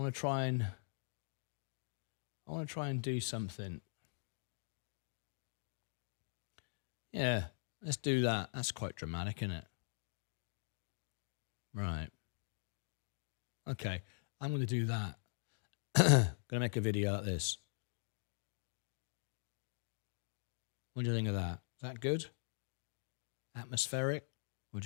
to try and do something. Yeah, let's do that. That's quite dramatic, isn't it? Right. Okay, I'm going to do that. Going to make a video like this. What do you think of that? Is that good? Atmospheric? What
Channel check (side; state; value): right; silent; digital silence